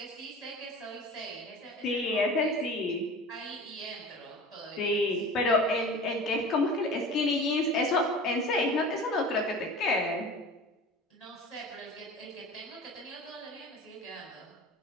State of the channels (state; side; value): normal; both; correlation 0.36